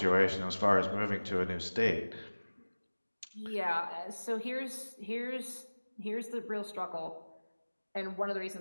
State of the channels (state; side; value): inverted; both; correlation -1.00